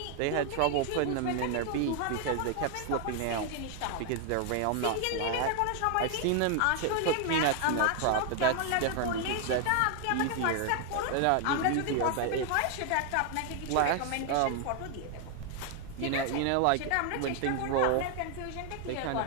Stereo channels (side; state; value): both; different; correlation 0.00